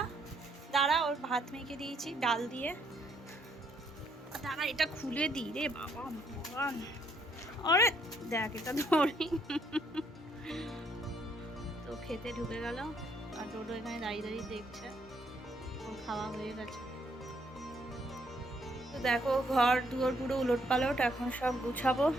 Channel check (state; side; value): normal; both; correlation 0.70